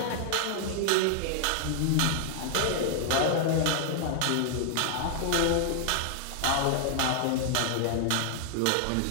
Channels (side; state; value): both; different; correlation 0.00